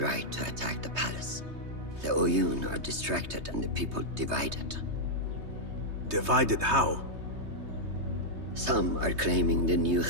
to attack the palace. The Oyun are distracted and the people divided. Divided how? Some are claiming the new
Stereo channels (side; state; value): left; late; 3.2 ms